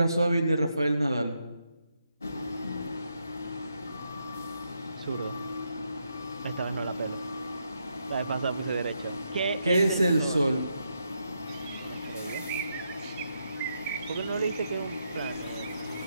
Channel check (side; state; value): both; inverted; correlation -0.81